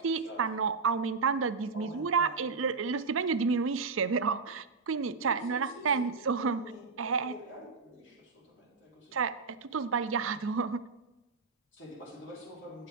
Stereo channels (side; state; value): left; quieter; 4.8 dB